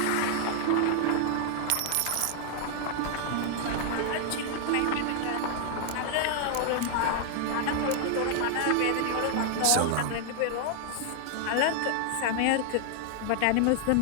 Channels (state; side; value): different; both; correlation 0.00